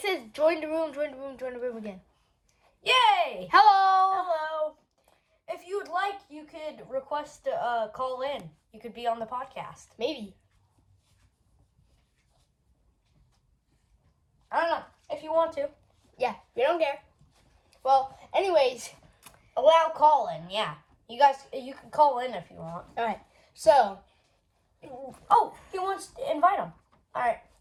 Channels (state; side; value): identical; both; correlation 1.00